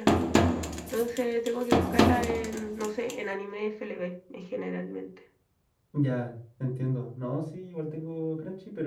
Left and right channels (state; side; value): identical; both; correlation 1.00